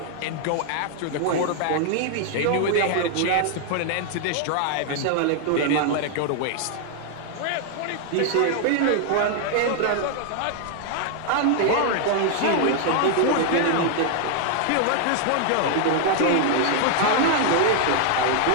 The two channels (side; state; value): both; different; correlation 0.00